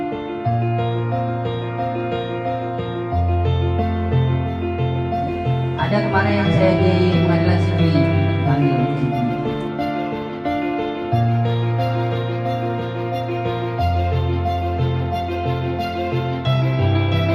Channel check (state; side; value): identical; both; correlation 1.00